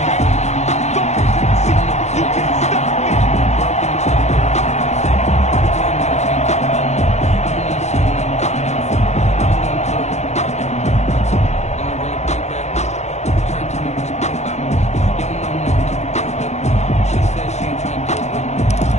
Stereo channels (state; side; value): late; right; 0.33 ms